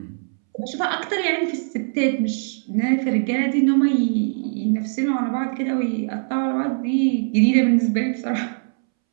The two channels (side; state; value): left; silent; 64 dB below the other